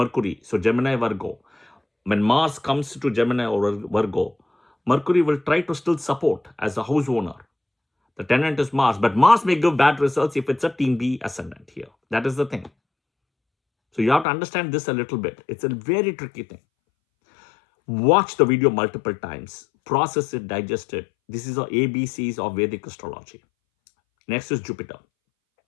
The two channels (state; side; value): drops out; right; at 14.2 s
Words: so Gemini, Virgo, when Mars comes to Gemini or Virgo, Mercury will try to still support as a house owner. The tenant is Mars, but Mars may give bad results if it's a team B ascendant here. That is the thing. So you have to understand this a little bit. It's a very tricky thing. Watch the video multiple times. Process it, digest it. This is the ABCs of Vedic astrology. Next is Jupiter.